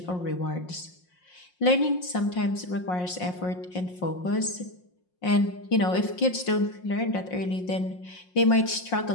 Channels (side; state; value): right; late; 5.6 ms